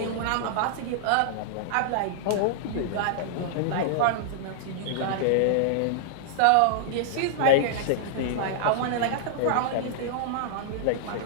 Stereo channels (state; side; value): different; both; correlation -0.01